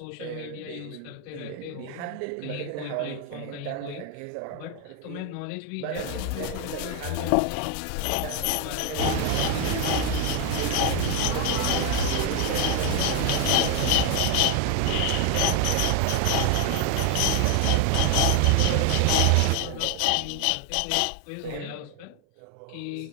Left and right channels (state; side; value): different; both; correlation 0.01